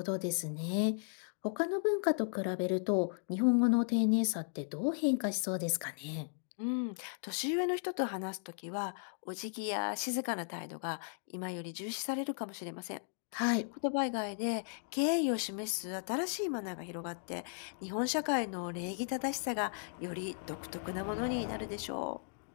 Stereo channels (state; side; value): silent; right; digital silence